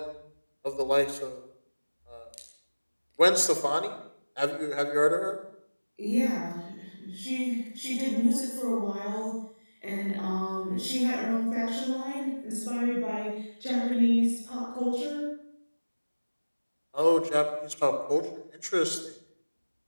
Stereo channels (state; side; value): inverted; both; correlation -1.00